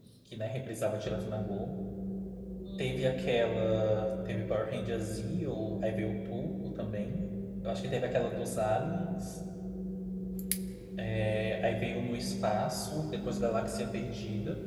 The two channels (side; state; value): both; identical; correlation 1.00